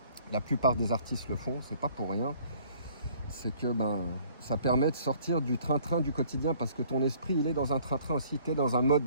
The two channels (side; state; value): both; inverted; correlation -0.57